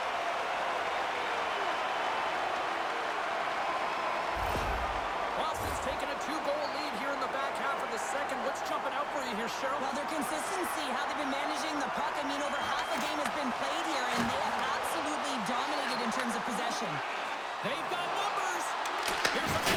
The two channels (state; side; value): identical; both; correlation 1.00